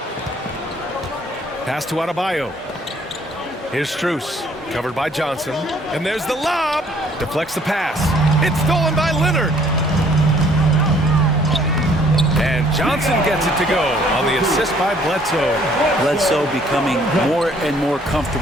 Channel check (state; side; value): normal; both; correlation 0.61